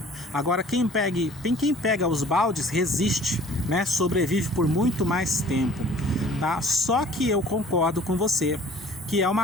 Agora quem pega os baldes resiste, né? Sobrevive por muito mais tempo, tá? Só que eu concordo com você que é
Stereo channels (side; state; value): both; normal; correlation 0.51